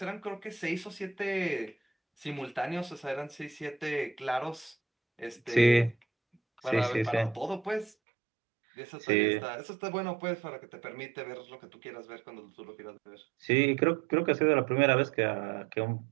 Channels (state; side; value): drops out; left; at 8.0 s